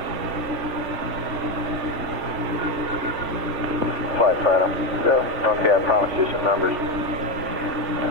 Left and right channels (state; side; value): late; left; 3.4 ms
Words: Flight Fighter. Go. Okay, I promised you some numbers.